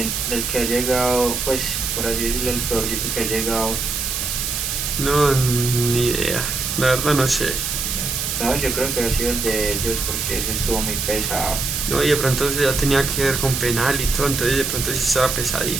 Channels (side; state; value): right; noise; hiss, 2 dB below the sound